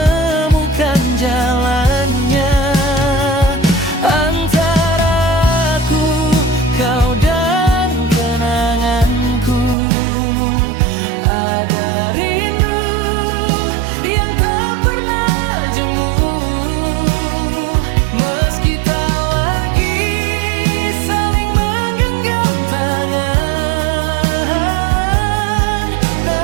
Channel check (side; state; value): left; drops out; at 9.8 s